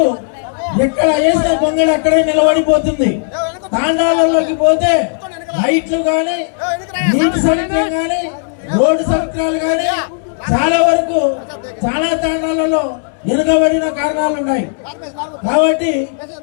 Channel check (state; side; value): silent; right; digital silence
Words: ఎక్కడ వేసిన గొంగళి అక్కడే నిలబడిపోతుంది. తాండాలలోకి పోతే లైట్లు కానీ, నీటి సౌకర్యం కానీ, రోడ్డు సౌకర్యాలు కానీ చాలా వరకు చాలా తాండాలలో వెనుకబడిన కారణాలు ఉన్నాయి. కాబట్టి